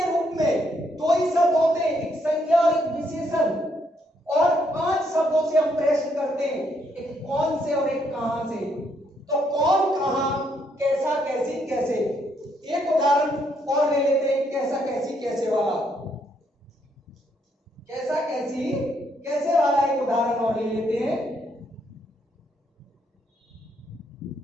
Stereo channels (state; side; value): normal; both; correlation 0.73